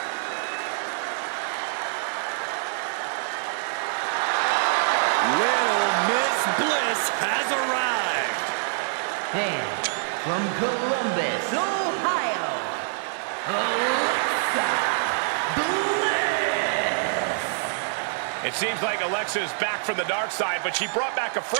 Has arrived. And from Columbus, Ohio, Alexa Bliss. It seems like Alexa is back from the dark side, but she brought back a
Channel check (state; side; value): silent; left; digital silence